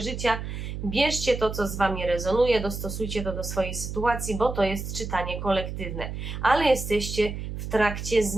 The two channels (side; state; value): right; noise; hum, 6 dB below the sound